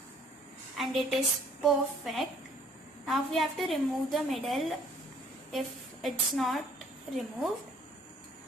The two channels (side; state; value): both; normal; correlation 0.58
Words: And it is perfect. Now we have to remove the middle if it's not removed.